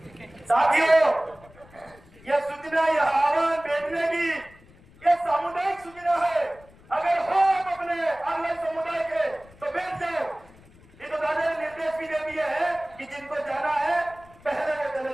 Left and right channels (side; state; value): left; noise; rumble, 25 dB below the sound